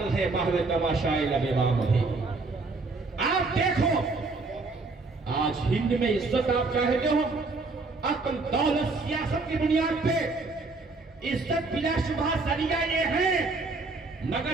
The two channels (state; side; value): quieter; left; 3.7 dB